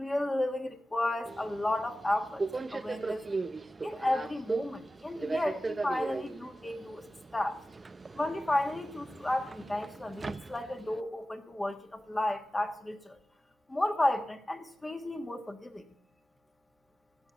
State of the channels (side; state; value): both; normal; correlation 0.95